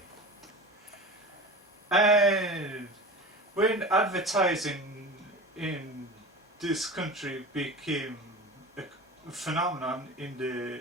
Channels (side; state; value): both; normal; correlation 0.32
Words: And when advertising in this country became a phenomenon in the